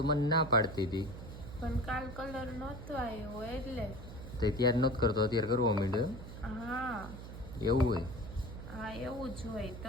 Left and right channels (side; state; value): right; noise; hum, 11 dB below the sound